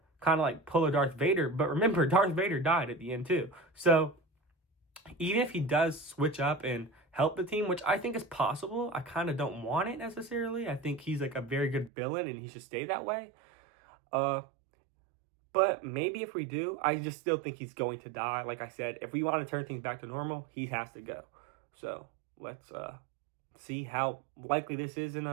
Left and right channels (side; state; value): left; drops out; at 11.9 s